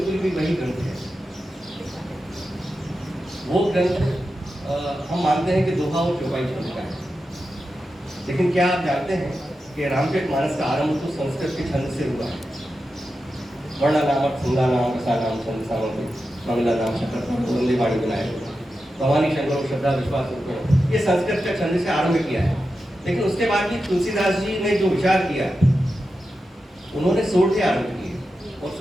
भी वही ग्रंथ है। वो ग्रंथ हम मानते हैं कि दोहा और चौपाई छंद का है, लेकिन क्या आप जानते हैं कि रामचरितमानस का आरंभ तो संस्कृत के छंद से हुआ है। वर्ण नाम, छंदा नाम, रसा नाम, छंद सामंत, मंगला नाम, शकर, वंदे वाणी बनाए, भवानी शंकर, श्रद्धा, विश्वास, ये संस्कृत का छंद से आरंभ किया है। लेकिन उसके बाद भी तुलसीदास जी ने जो विचार किया, उन्होंने 16 से आरंभ किए और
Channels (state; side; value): normal; both; correlation 0.90